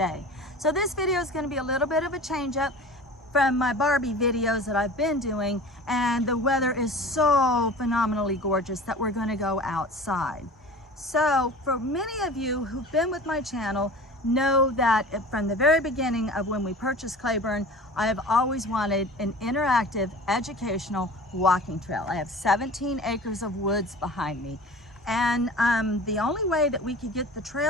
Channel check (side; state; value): both; normal; correlation 0.39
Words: So this video is going to be a little bit of a change up from my Barbie videos that I've been doing, and the weather is so phenomenally gorgeous that we're going to go outside. So for many of you who've been with my channel know that from the very beginning of when we purchased Cleburne, I have always wanted an interactive educational walking trail. I have 17 acres of woods behind me, and the only way that we could get the